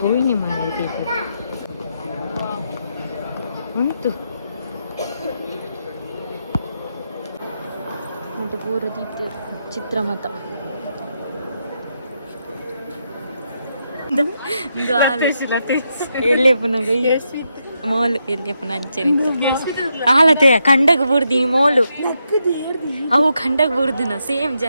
ಹೋಗಿ ಮಾಡಿ ಉಂಟು ಉಂಟು ಪೂರ ದೀಪ ಚಿತ್ರಮತ ಎಲ್ಲಿ ಪುನಗ ಮೋಲು ಎಲ್ಲಿ ಪುನಃ ಅಂಚನೆ ಆಲತೆಯ ಕಂಡಗ ಬುಡ್ದಿ ಮೋಲು ಅವು ಕಂಡಗ ಬುಡ್ದಿನ ಸೇಮ್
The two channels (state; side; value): inverted; both; correlation -0.82